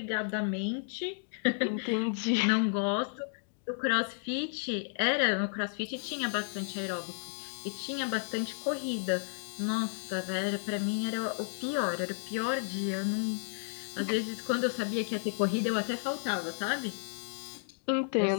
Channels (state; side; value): silent; right; digital silence